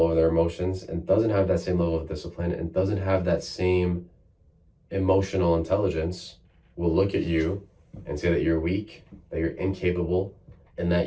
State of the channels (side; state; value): both; identical; correlation 1.00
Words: over their emotions and doesn't have that same level of discipline and doesn't have that same emotional intelligence will look at you and say that you're weak, that you're incapable, and